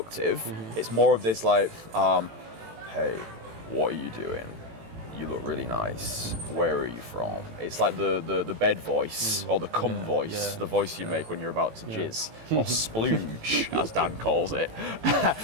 it's more of this like, hey, what are you doing? You look really nice. Where are you from? It's like the bed voice or the cum voice, the voice you make when you're about to jizz or splooge, as Dan calls it.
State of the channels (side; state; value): left; late; 18 ms